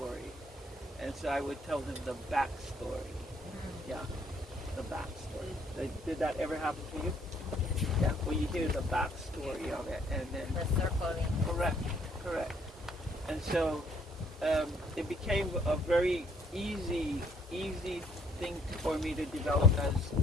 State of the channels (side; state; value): both; normal; correlation 0.64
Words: and so I would tell them the backstory. Yeah, the backstory. Did that ever happen to you? Yeah, well, you hear the backstory of it, and then The circling. correct. And so it became a very easy thing for me to develop as